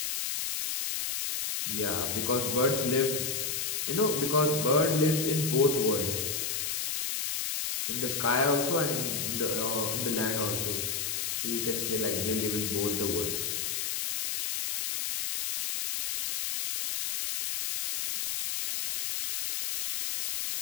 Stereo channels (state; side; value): noise; left; hiss, 1 dB below the sound